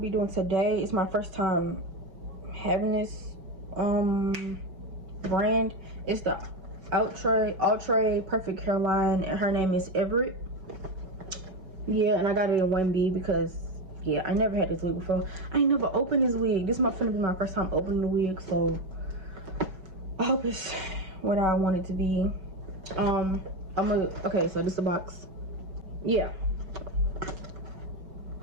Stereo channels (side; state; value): left; late; 5.3 ms